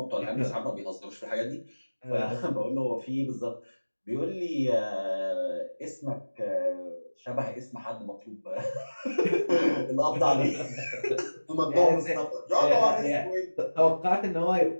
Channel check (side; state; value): both; inverted; correlation -1.00